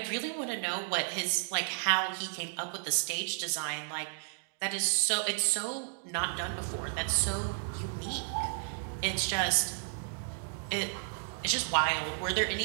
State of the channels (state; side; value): silent; left; digital silence